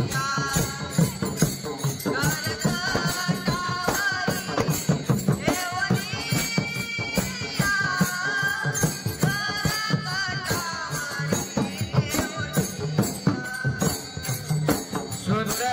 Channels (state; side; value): identical; both; correlation 1.00